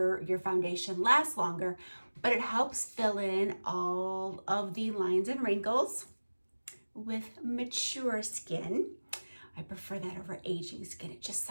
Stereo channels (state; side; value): inverted; both; correlation -1.00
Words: foundation last longer, but it helps fill in all of the lines and wrinkles with mature skin. I prefer that over aging skin. It just